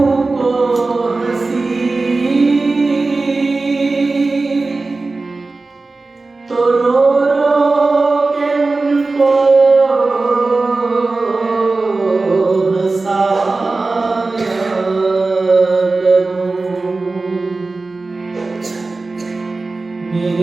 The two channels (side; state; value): left; quieter; 3.5 dB